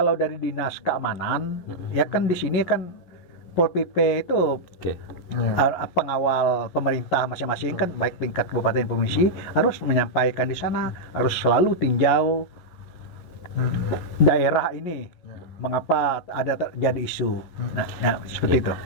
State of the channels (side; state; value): right; late; 11 ms